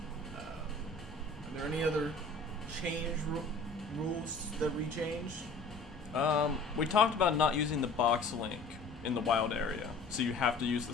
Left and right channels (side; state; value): right; quieter; 3.5 dB